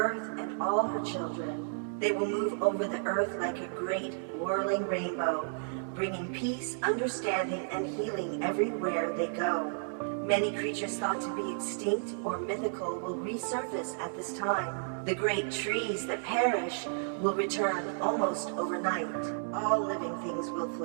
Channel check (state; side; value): silent; left; 56 dB below the other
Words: and all her children. They will move over the earth like a great whirling rainbow, bringing peace, understanding, and healing everywhere they go. Many creatures thought to be extinct or mythical will resurface at this time. The great trees that perish will return almost overnight. All living things will